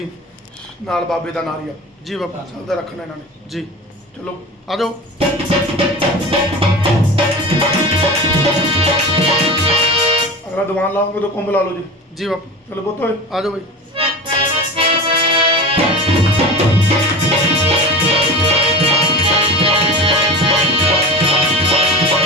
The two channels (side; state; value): both; normal; correlation 0.31